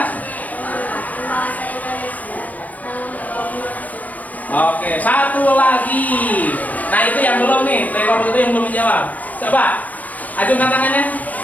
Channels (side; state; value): right; late; 0.078 ms